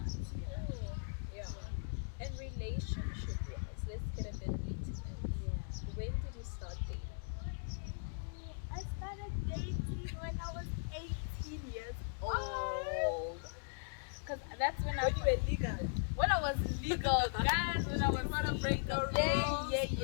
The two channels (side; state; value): right; silent; digital silence